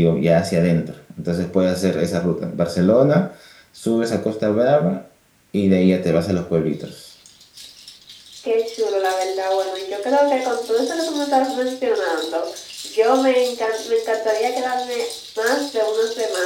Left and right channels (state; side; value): identical; both; correlation 1.00